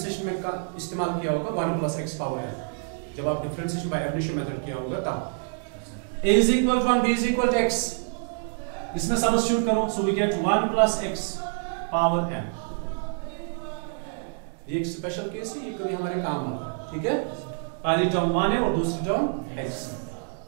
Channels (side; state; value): left; silent; 60 dB below the other